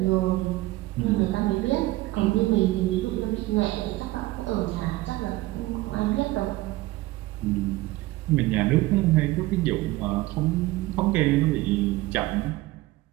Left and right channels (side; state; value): left; quieter; 18.7 dB